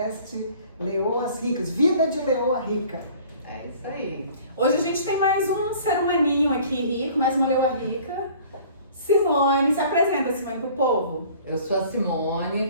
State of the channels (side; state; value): both; inverted; correlation -0.50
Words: Leoas Ricas, Vida de Leoa Rica. É isso aí. Hoje a gente tem mais um ser humaninho aqui rico, mais uma leoa rica. Simone, se apresenta, Simone, pro povo. Eu sou a Simone,